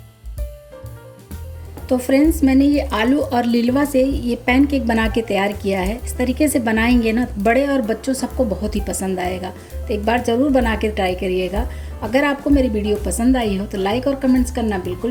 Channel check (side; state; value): both; identical; correlation 1.00